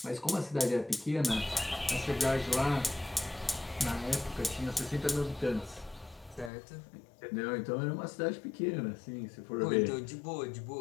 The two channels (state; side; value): drops out; right; at 6.5 s